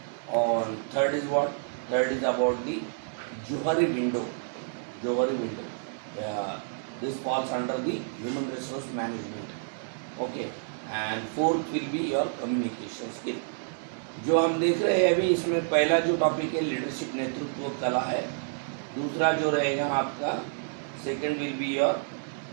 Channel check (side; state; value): left; silent; digital silence